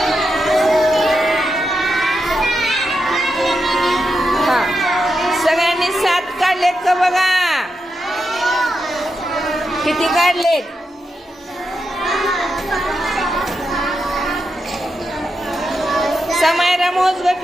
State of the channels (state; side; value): normal; both; correlation 0.86